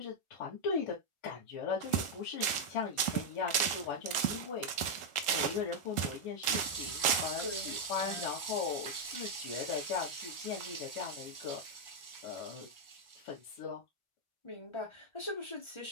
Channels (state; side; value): late; right; 1.4 ms